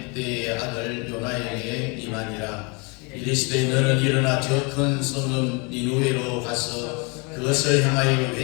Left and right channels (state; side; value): quieter; right; 31.1 dB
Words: 아들 요나에게 임하니라. 이르시되 너는 일어나 저 큰 성읍 니누웨로 가서 그것을 향하여